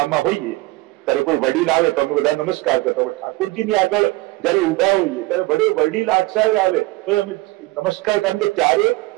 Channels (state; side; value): quieter; left; 20.8 dB